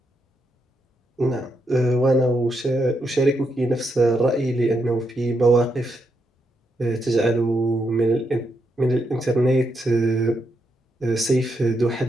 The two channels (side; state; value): both; normal; correlation 0.81